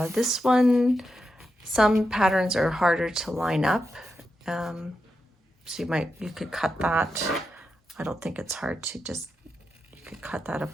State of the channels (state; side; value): normal; both; correlation 0.87